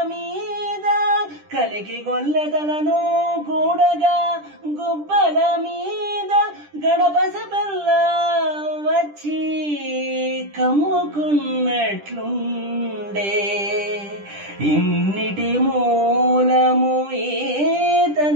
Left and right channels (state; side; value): late; left; 10 ms